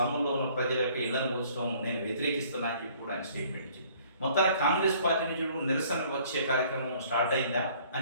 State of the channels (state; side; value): inverted; both; correlation -0.57